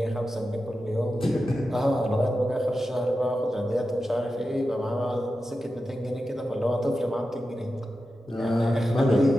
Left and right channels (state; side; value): normal; both; correlation 0.91